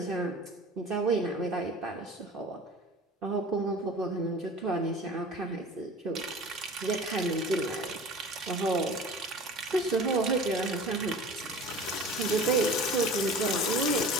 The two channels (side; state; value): both; normal; correlation 0.40